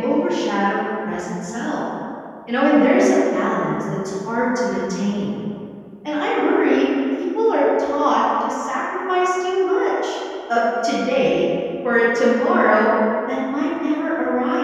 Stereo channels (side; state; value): both; identical; correlation 1.00